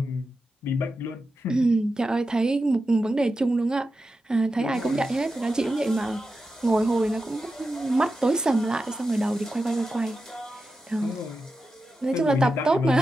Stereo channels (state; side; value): normal; both; correlation 0.90